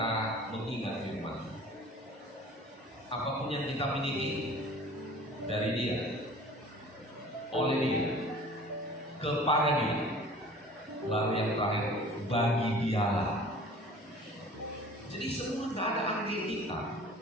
mengingat firman. Apapun yang kita miliki dari Dia, oleh Dia, kepada Dia, lalu yang terakhir bagi Dialah. Jadi semua gak ada andil kita.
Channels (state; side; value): normal; both; correlation 0.45